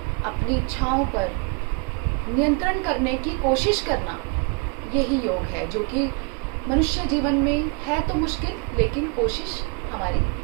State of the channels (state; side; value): quieter; left; 33.0 dB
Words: अपनी इच्छाओं पर नियंत्रण करने की कोशिश करना, यही योग है, जो कि मनुष्य जीवन में है तो मुश्किल, लेकिन कोशिश हमारी